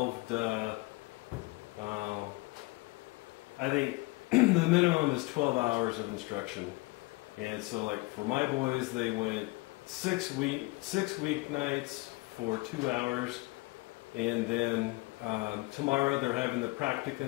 to, I think the minimum is 12 hours of instruction. And so, like, for my boys, they went 6 weeknights for 2 hours, and then tomorrow they're having the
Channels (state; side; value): quieter; right; 23.4 dB